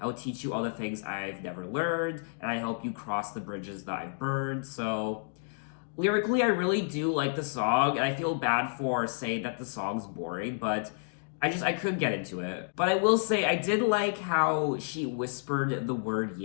would teach you all the things I've never learned, and I help you cross the bridges that I've burned. So, lyrically, I really do like the song, and I feel bad for saying that the song's boring, but I couldn't get into it. But I will say, I did like how she whispered the word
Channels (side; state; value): right; silent; digital silence